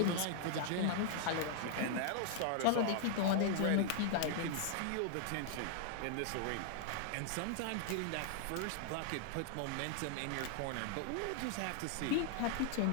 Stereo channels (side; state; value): both; different; correlation 0.00